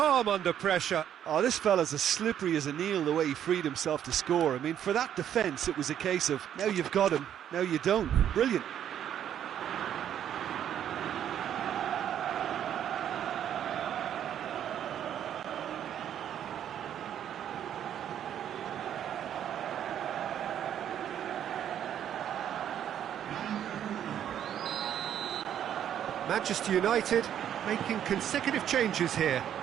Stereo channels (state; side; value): quieter; left; 10.0 dB